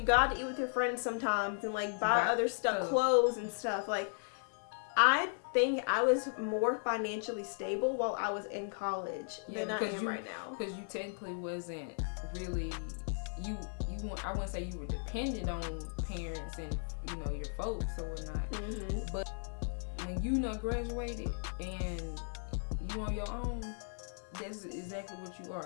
God, to eat with your friends sometimes, and like buy other stuff, clothes and stuff. Like I think I was more financially stable while I was in college than I am right now. Because you technically wasn't really I wouldn't say you were dependent on parents and your folks or whatnot. But when you graduated and you on your own, that's exactly what you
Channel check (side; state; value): right; silent; 54 dB below the other